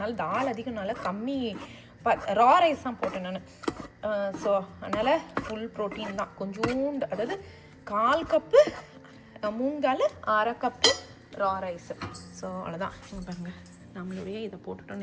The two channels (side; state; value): both; identical; correlation 1.00